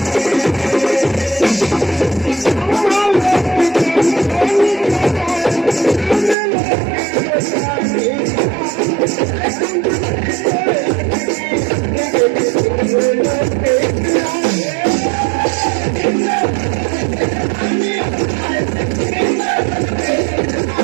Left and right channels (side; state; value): left; drops out; at 6.4 s